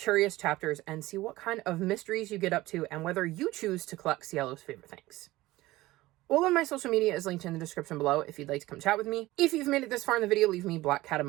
Chapters and see what kind of mysteries you get up to and whether you choose to collect Cielo's favorite things. All of my social media is linked in the description below if you'd like to come chat with me. If you've made it this far in the video, leave me black cat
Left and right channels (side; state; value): left; quieter; 18.1 dB